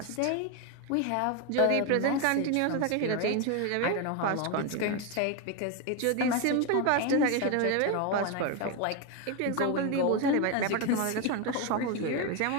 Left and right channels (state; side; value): different; both; correlation 0.02